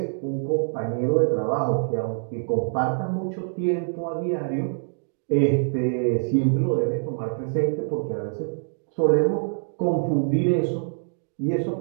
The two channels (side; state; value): left; silent; digital silence